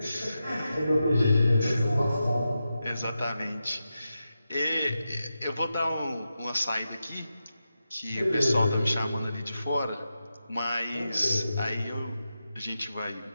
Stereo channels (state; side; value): inverted; both; correlation -0.90